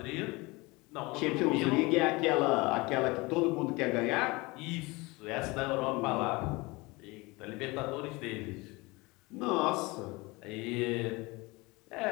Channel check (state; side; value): quieter; right; 23.9 dB